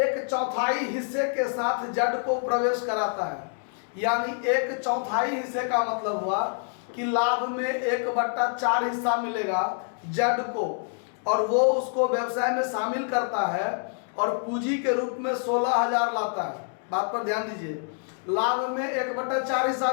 हिस्से के साथ जड़ को प्रवेश कराता है। यानी 1/4 हिस्से का मतलब हुआ कि लाभ में 1/4 हिस्सा मिलेगा जड़ को, और वो उसको व्यवसाय में शामिल करता है और पूंजी के रूप में 16,000 लाता है। बात पर ध्यान दीजिए, लाभ में 1/4 हिस्सा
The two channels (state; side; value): silent; right; 56 dB below the other